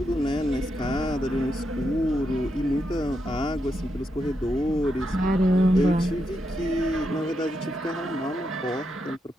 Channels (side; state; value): both; normal; correlation 0.83